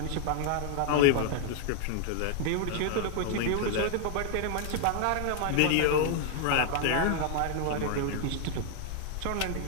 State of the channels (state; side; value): different; both; correlation 0.00